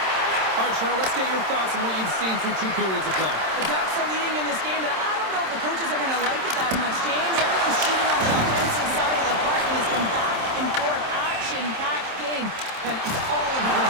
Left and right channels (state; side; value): late; left; 27 ms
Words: All right, Cheryl, let's get your thoughts on what you've seen through 2 periods of play. The Ducks are leading in this game, but I don't know if the coaches are going to like it that much, James. Everyone's shooting on the offensive side of the park, and it's been back and forth, action-packed game. And it's all